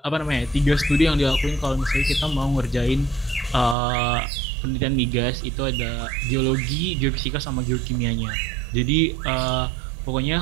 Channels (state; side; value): drops out; left; at 3.8 s